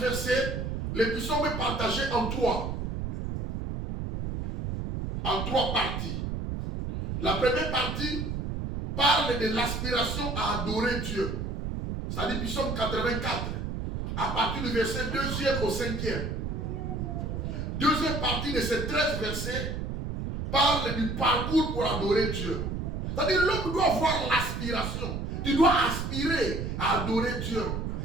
versets, le psaume est partagé en trois parties. La première partie parle de l'aspiration à adorer Dieu. C'est-à-dire psaume 84, à partir du verset 2e au 5e. Deuxième partie de ces 13 versets parle du parcours pour adorer Dieu. C'est-à-dire l'homme doit avoir l'aspiration. Tu dois aspirer à adorer Dieu.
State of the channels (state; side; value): noise; right; rumble, 3 dB below the sound